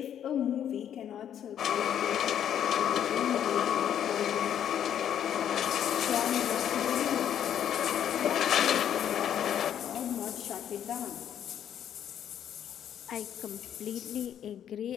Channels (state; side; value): quieter; right; 9.7 dB